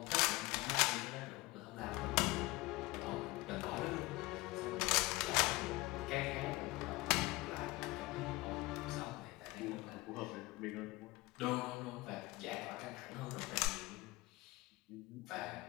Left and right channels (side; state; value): right; quieter; 21.4 dB